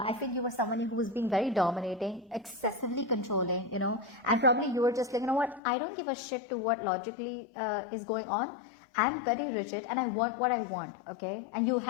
feel you were someone who was being very dominating, excessively controlling, and probably you were just like, you know what, I don't give a shit to what logically is going on. I'm very rigid and I want what I want, okay? And you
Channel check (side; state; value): right; drops out; at 5.6 s